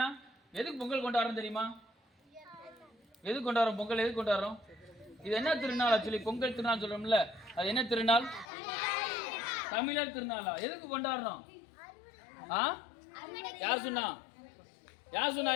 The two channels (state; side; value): drops out; right; at 8.5 s